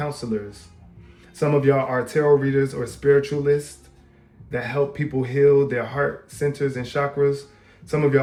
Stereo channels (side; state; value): both; identical; correlation 1.00